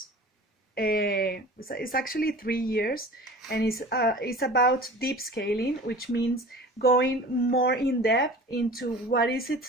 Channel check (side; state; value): both; normal; correlation 0.40